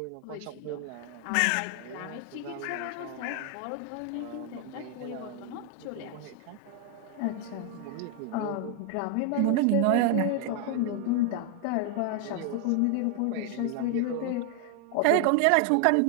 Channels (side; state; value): both; different; correlation 0.00